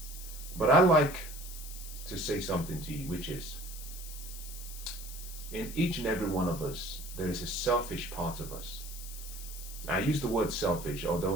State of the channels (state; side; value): noise; left; hiss, 12 dB below the sound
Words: But I like to say something to you, which is, in each and every one of us, there is a selfish part of us. I use the word selfish,